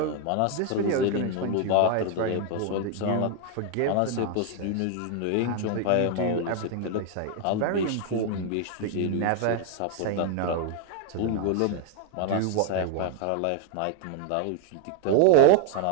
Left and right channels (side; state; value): both; different; correlation 0.01